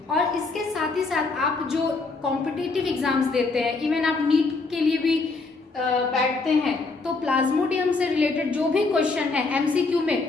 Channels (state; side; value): quieter; right; 3.8 dB